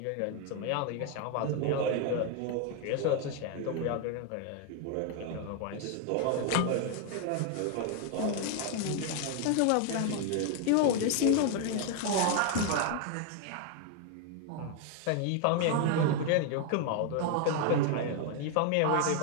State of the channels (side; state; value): both; different; correlation 0.01